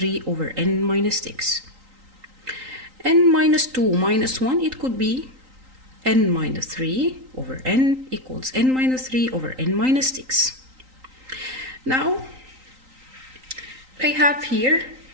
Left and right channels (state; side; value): late; left; 3.9 ms